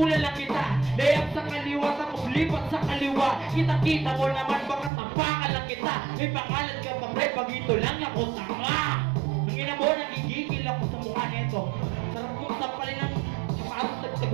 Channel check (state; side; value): drops out; left; at 4.9 s